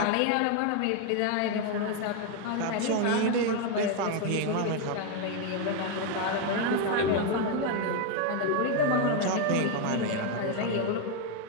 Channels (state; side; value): different; both; correlation 0.01